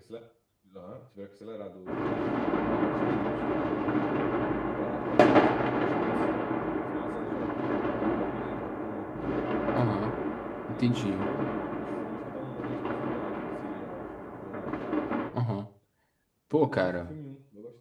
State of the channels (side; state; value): both; identical; correlation 1.00